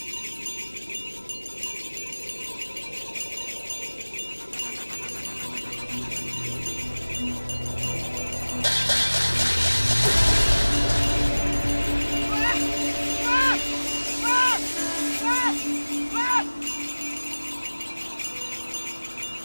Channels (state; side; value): inverted; both; correlation -1.00